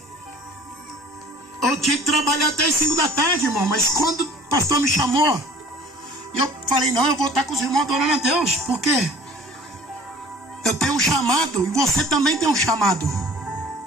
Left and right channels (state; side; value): normal; both; correlation 0.48